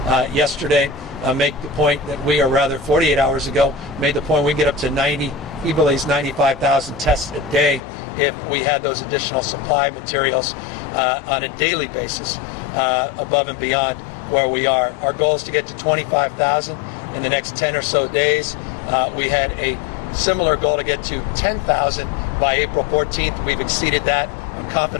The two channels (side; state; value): right; drops out; at 7.8 s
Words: yesterday make the point that we, or rather 48 hours ago, made the point we get up to 90, he believes 95,000 tests a day if we had those additional supply materials on a daily basis above and beyond where we are. Our goal is to get to 25,000 in the next 10 or so days. We had a similar goal to get to 10,000 by April 14th. We've exceeded that. I'm